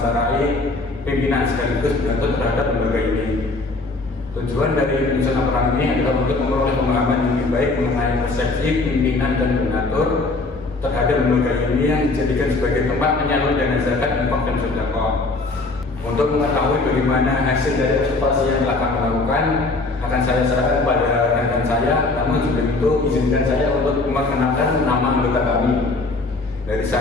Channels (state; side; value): quieter; right; 3.3 dB